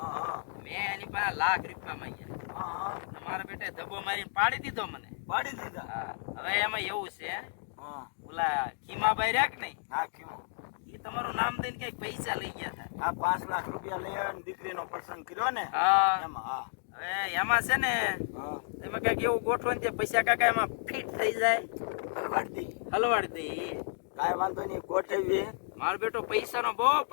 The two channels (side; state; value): right; silent; digital silence